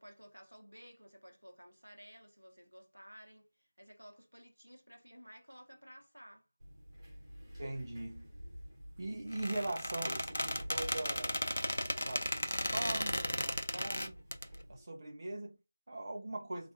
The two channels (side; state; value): both; inverted; correlation -0.94